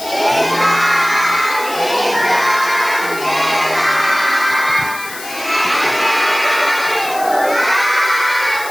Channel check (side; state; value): left; noise; hiss, 13 dB below the sound